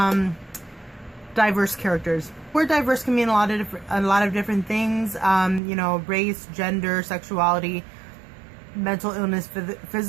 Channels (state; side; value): drops out; left; at 5.6 s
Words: diverse characters. Word diverse can mean a lot of different things. You know, race, gender, sexuality, mental illness,